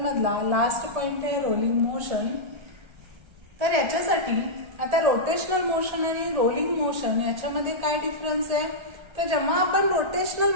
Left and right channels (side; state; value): left; late; 1.3 ms